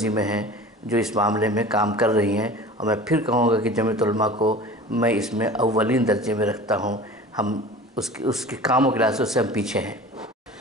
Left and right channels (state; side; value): normal; both; correlation 0.39